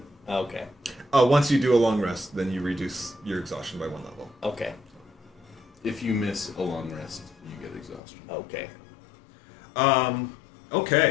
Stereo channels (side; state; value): right; drops out; at 8.0 s